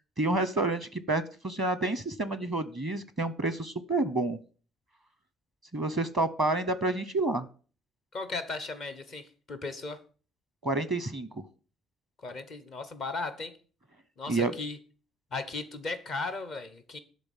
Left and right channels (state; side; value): normal; both; correlation 0.41